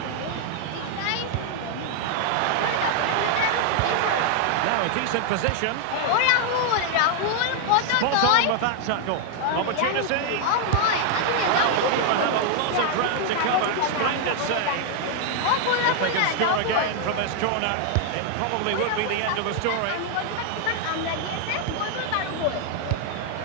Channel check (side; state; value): both; different; correlation 0.00